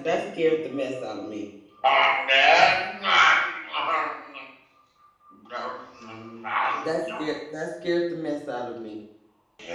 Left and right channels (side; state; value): both; identical; correlation 1.00